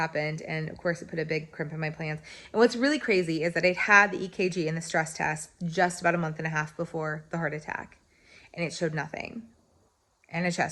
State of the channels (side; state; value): both; identical; correlation 1.00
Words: And of course, it put a big crimp in my plans. And what's really crazy is that I'd had the EKG and the stress test just about a month and a half before the heart attack. And it showed nothing. And a